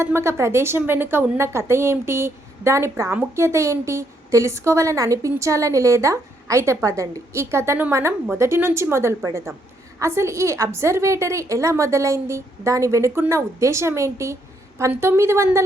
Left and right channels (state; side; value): normal; both; correlation 0.73